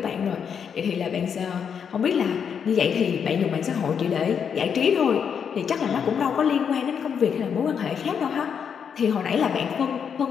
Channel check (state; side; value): quieter; right; 7.2 dB